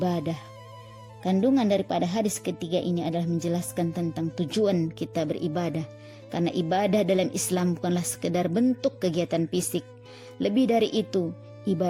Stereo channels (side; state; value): both; identical; correlation 1.00